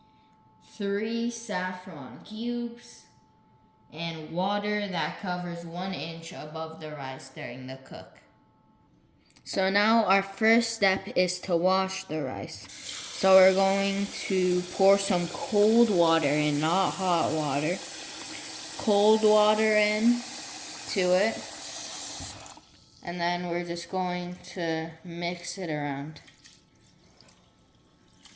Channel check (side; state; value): both; identical; correlation 1.00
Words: 3 saffron cubes, and water that covers 1 inch above the rice during the cook. So now our first step is to wash the rice. So we're going to pour some cold water in, not hot water. Cold water in to it. And then we're just going to mix it around.